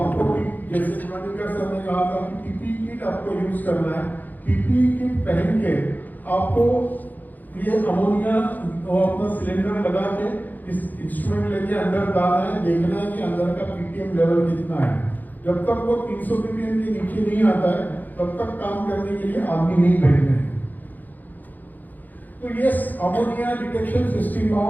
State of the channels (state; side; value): late; right; 0.084 ms